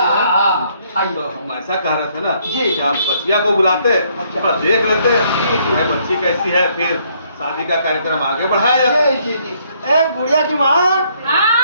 आइए। तो हम ऐसा कह रहे थे ना जी। कि आप बच्चिया को बुलाते अच्छा। थोड़ा देख लेते हैं बच्ची कैसी है फिर शादी का कार्यक्रम आगे बढ़ाया जाए। जी जी जी ए गुड़िया की माँ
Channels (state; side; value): inverted; both; correlation -0.68